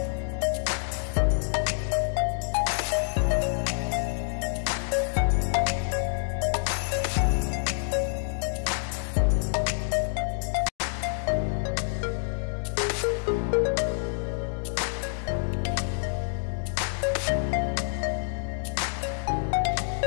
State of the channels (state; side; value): silent; right; digital silence